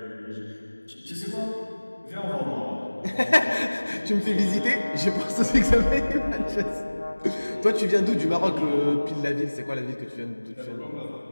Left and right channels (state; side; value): inverted; both; correlation -1.00